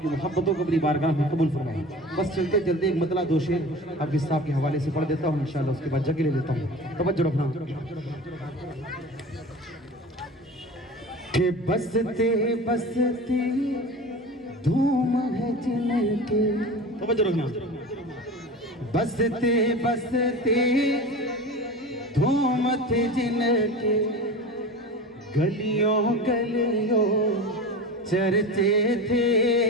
मोहब्बतों को अपनी बारगाह में कबूल फरमाए। बस चलते चलते एक मतला दो शेर अब इस साहब के हवाले से पढ़ देता हूँ इंशाल्लाह, उसके बाद जगह ले लेता हूँ। तवज्जो रखना कि बसते बसते धूम है जिनके, तवज्जो रखना, बसते बसते धूम थे जिनके, गलियों गलियों चर्चे थे,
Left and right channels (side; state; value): both; normal; correlation 0.33